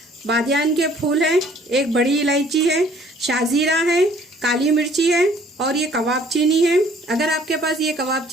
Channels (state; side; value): normal; both; correlation 0.57